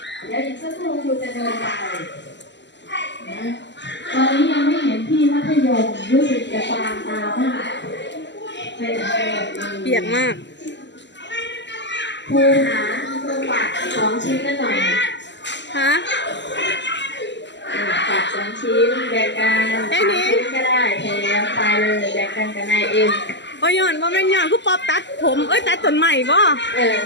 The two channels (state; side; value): late; right; 0.52 ms